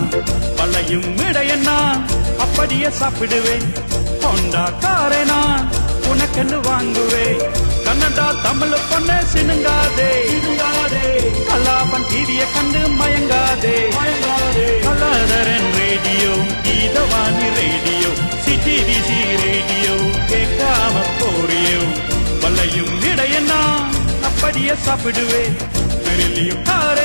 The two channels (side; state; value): both; inverted; correlation -1.00